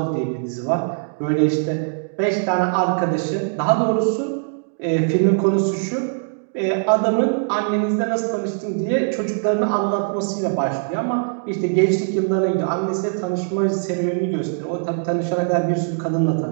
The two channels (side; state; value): left; silent; digital silence